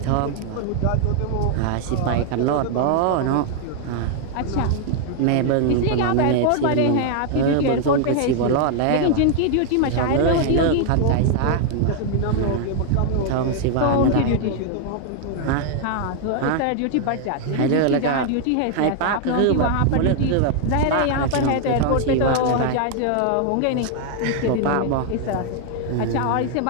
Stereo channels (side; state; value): both; different; correlation 0.00